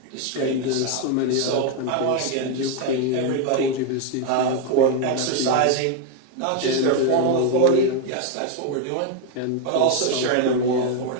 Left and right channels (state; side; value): different; both; correlation 0.01